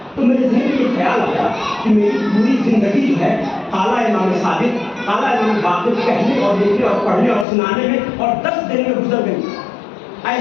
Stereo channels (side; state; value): right; drops out; at 7.5 s